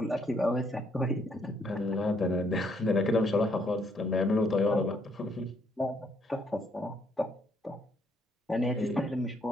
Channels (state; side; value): normal; both; correlation 0.70